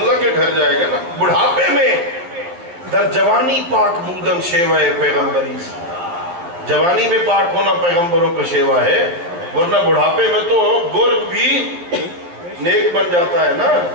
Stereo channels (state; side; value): late; left; 11 ms